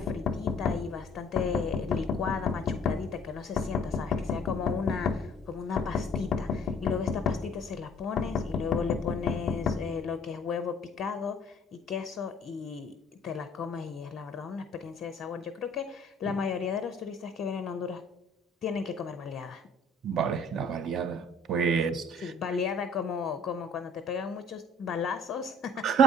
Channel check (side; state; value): both; normal; correlation 0.56